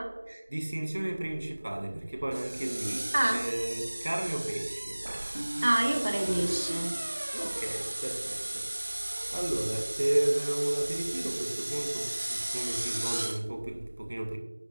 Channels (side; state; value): both; inverted; correlation -1.00